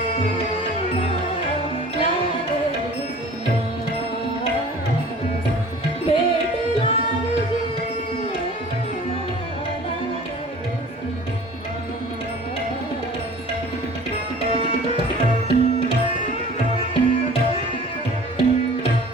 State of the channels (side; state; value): both; normal; correlation 0.45